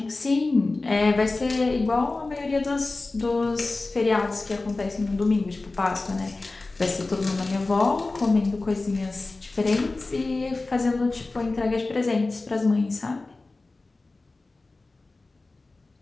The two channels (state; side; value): quieter; right; 3.3 dB